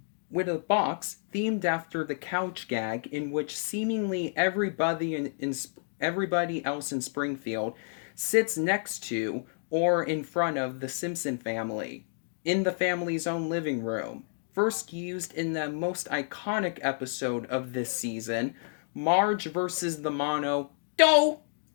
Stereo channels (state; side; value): silent; right; digital silence